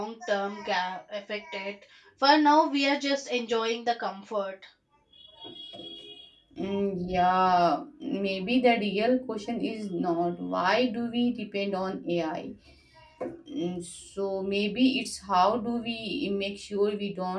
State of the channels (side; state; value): both; identical; correlation 1.00